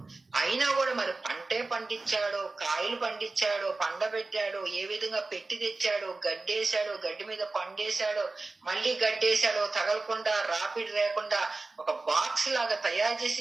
అయినా కూడా మరి పంటే పండించాడో, కాయలు పండించాడో, పండబెట్టాడో, ఏ విధంగా పెట్టి తెచ్చాడో, గడ్డేశాడో, గడ్డి మీద పండేశాడో, మళ్ళీ గడ్డేశాడో, తగలకుండా రాపిడ్ లేకుండా ఒక బాక్స్ లాగా తయారు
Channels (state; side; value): quieter; left; 3.4 dB